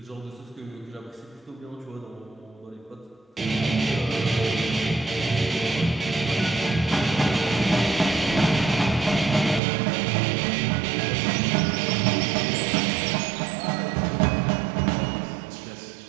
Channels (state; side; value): drops out; left; at 9.6 s